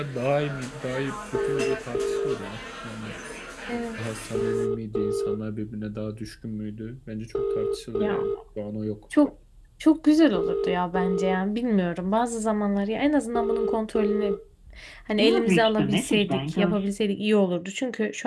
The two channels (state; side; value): identical; both; correlation 1.00